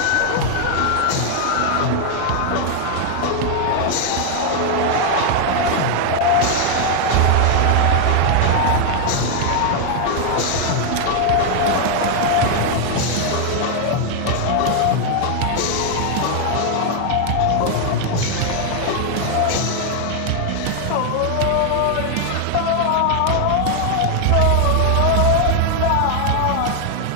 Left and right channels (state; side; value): different; both; correlation 0.00